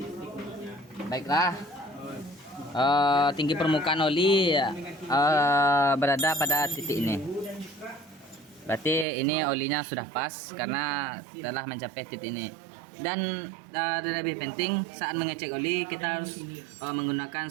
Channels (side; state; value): left; drops out; at 9.1 s